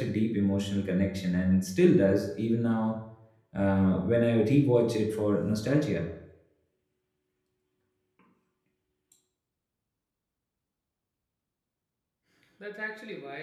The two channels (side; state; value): both; identical; correlation 1.00